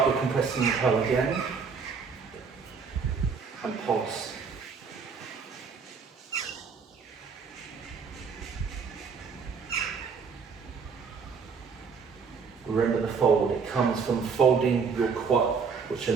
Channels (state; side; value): quieter; left; 5.6 dB